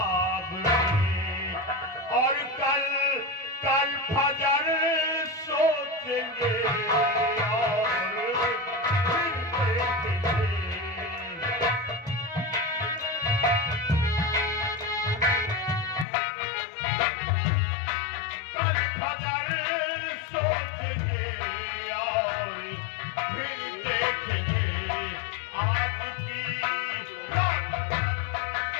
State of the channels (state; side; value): drops out; right; at 16.1 s